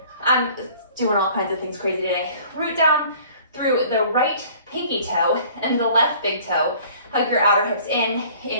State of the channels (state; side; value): inverted; both; correlation -0.51